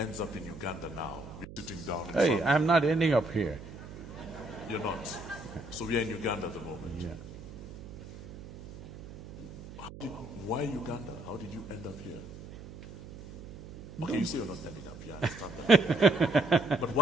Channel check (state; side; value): noise; right; hum, 14 dB below the sound